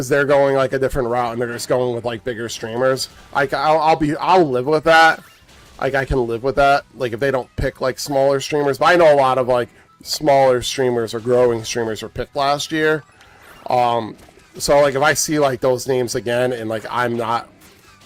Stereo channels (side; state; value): both; identical; correlation 1.00